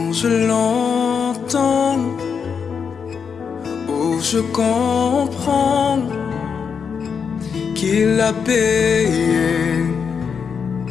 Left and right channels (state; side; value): quieter; right; 6.4 dB